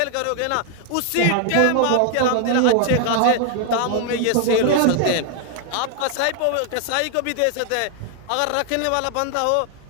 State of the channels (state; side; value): different; both; correlation 0.00